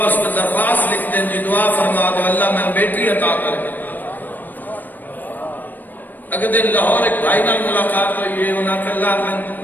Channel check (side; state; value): right; late; 0.089 ms